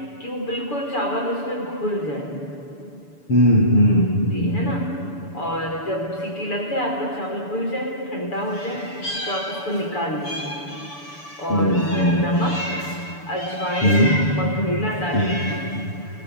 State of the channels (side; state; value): right; late; 6.9 ms